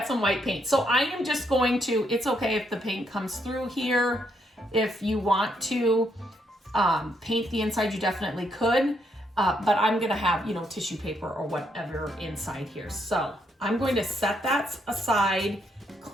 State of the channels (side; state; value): both; normal; correlation 0.75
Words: some white paint. So I am just going to, it's okay if the paint comes through here. If you want to paint the inside, you definitely could. But I'm gonna have, you know, tissue paper or whatever inside here. So I'm going to set that aside,